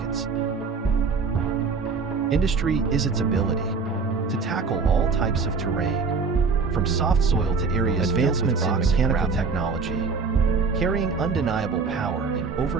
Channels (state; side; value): quieter; left; 4.8 dB